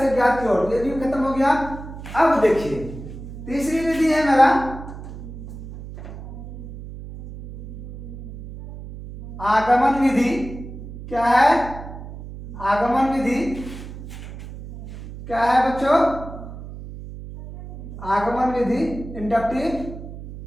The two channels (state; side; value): noise; right; hum, 12 dB below the sound